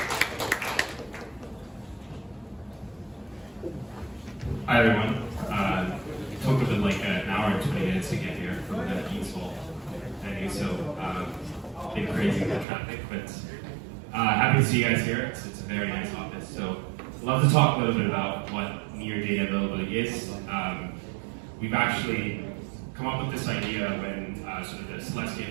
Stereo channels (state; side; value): drops out; left; at 12.7 s